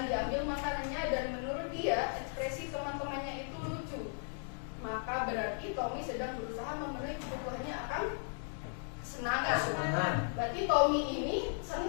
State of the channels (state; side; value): silent; right; 54 dB below the other